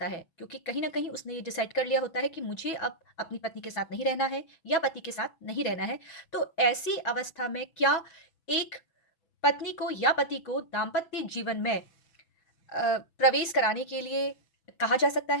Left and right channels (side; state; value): right; late; 6.1 ms